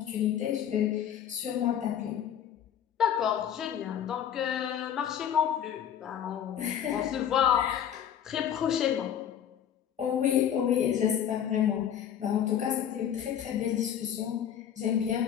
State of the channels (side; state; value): right; quieter; 9.5 dB